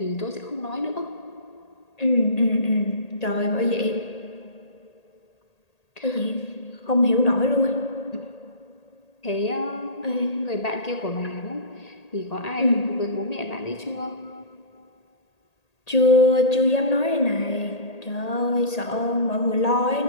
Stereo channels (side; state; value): right; late; 1.8 ms